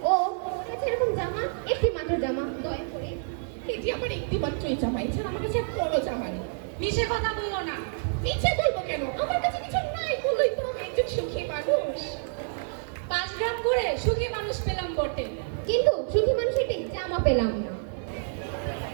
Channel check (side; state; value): left; silent; digital silence